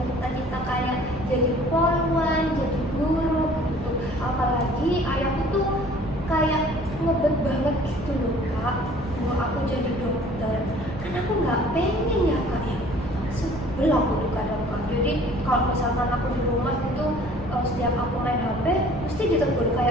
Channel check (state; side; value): noise; right; rumble, 16 dB below the sound